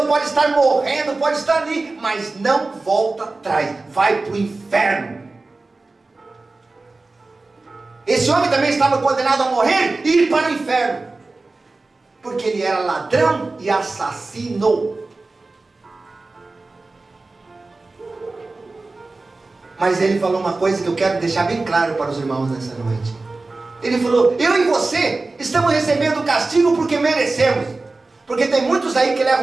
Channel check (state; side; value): quieter; left; 3.4 dB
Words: pode estar morrendo, pode estar ali, mas não volta atrás, vai para o inferno. Esse homem também estava condenado a morrer e ir para o inferno, porque ele era ladrão e assassino. Mas ele falou uma coisa que eu quero deixar bem claro para os irmãos nessa noite. Ele falou: eu e você estamos recebendo o castigo porque merecemos. Porque tem muitos aí que